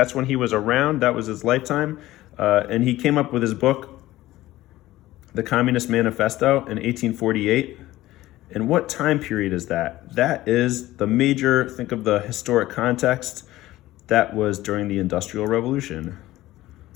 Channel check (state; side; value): quieter; right; 16.2 dB